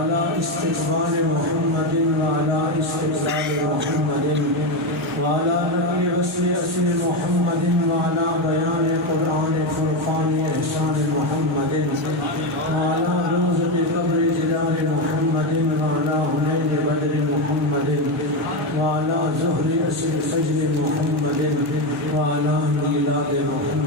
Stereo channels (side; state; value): both; normal; correlation 0.11